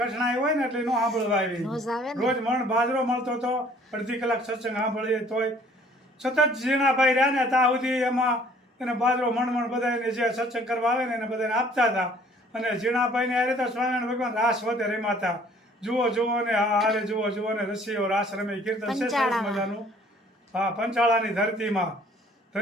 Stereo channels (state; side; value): normal; both; correlation 0.56